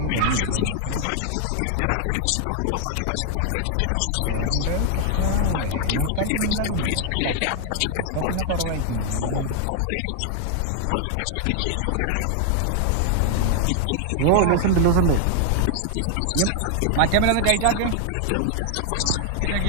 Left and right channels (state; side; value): different; both; correlation 0.00